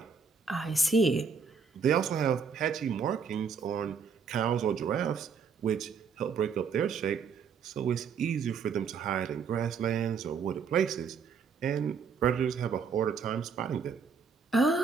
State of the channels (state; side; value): quieter; left; 5.9 dB